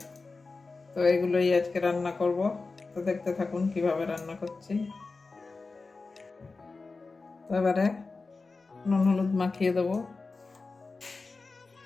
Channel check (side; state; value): right; quieter; 3.9 dB